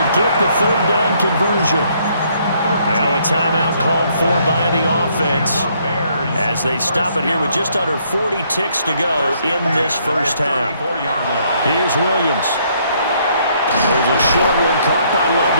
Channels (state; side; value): inverted; both; correlation -0.68